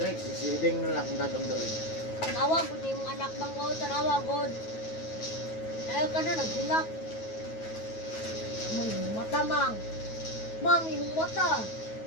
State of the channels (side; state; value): right; late; 9.3 ms